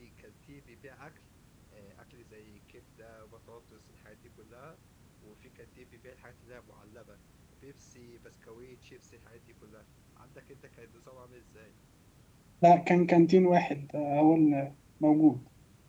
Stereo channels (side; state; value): both; identical; correlation 1.00